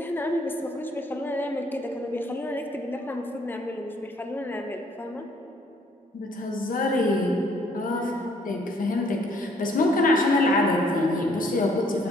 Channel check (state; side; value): normal; both; correlation 0.63